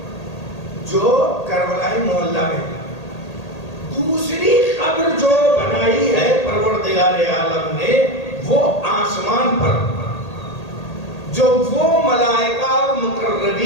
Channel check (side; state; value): right; late; 1.8 ms